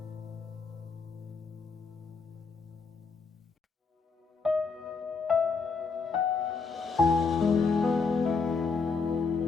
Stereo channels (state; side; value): quieter; right; 4.7 dB